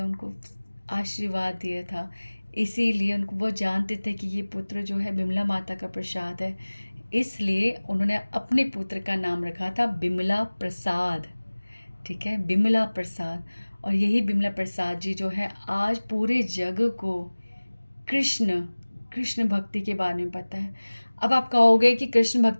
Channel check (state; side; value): inverted; both; correlation -1.00